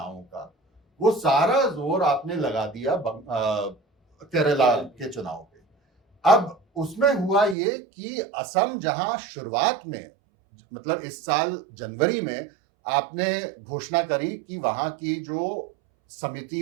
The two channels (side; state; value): left; drops out; at 7.6 s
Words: का, वो सारा जोर आपने लगा दिया केरला के चुनाव पे। अब उसमें हुआ ये कि असम जहां शुरुआत में, मतलब इस साल जनवरी में आपने घोषणा करी कि वहां की जो समिति